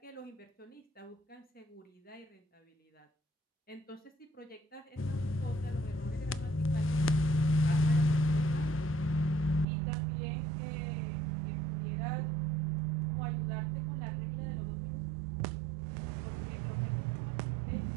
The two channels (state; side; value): drops out; left; at 9.7 s